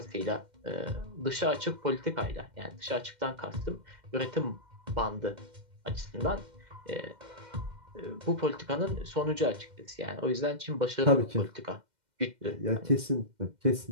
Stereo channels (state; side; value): late; left; 2.1 ms